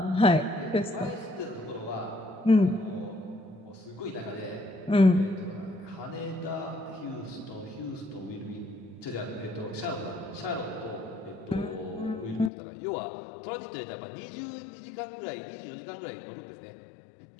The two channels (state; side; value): drops out; right; at 12.5 s